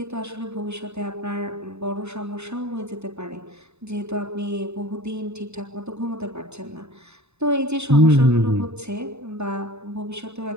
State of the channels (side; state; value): left; late; 0.81 ms